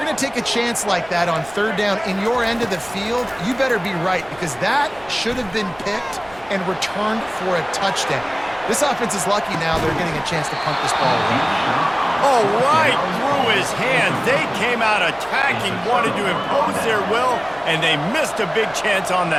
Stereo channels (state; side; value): noise; right; rumble, 24 dB below the sound